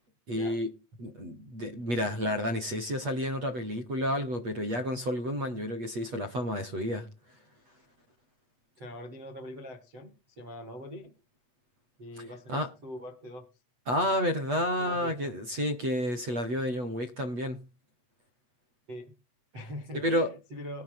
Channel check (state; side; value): late; left; 8.3 ms